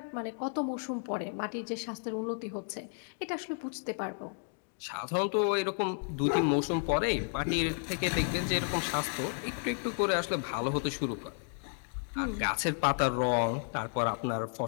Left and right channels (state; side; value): silent; right; 56 dB below the other